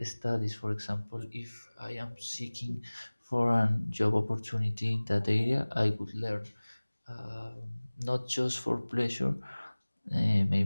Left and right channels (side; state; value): both; inverted; correlation -1.00